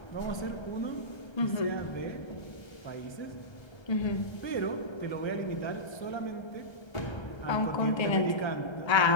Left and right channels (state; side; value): late; right; 1.3 ms